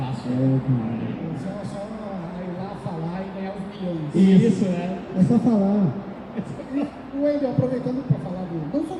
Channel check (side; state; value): both; identical; correlation 1.00